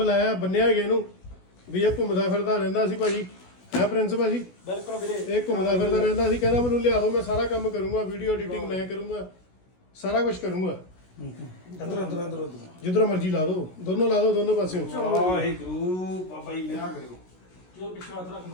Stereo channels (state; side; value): late; right; 16 ms